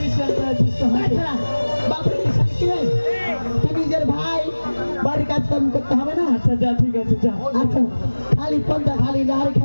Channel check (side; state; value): both; inverted; correlation -1.00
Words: আছিস তো তাছাড়া বাপের কিষান কি রে? তুই নিজের ভাই বাড়ির কাজ কাম করতে হবে না আচ্ছা যা ঠিক আছে যা আচ্ছা খালি পন্থা খালি লাড়ি